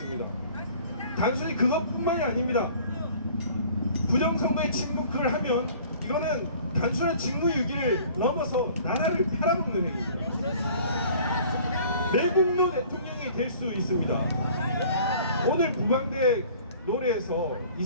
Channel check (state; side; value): inverted; both; correlation -0.50